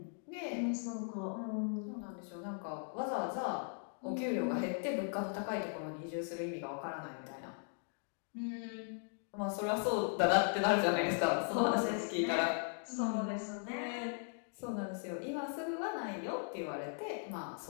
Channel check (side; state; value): right; silent; 52 dB below the other